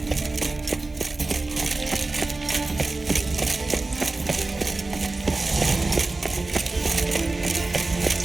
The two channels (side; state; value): left; quieter; 3.3 dB